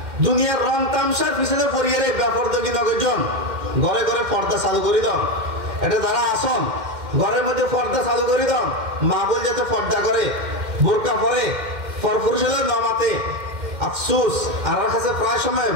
দুনিয়ার রং তামসার পিছনে পরিয়ারে বেপরদগি নগরজন ঘরে ঘরে পর্দা চালু করে দাও। এটা যারা আসন ঘরের মধ্যে পর্দা চালু করে দাও, মা বল যাতে পর্দা করে, বোরকা পরে, পরপুরুষ হলে নমাতে আফসুস। আর কাছে প্রায় সময়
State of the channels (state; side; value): late; left; 2.1 ms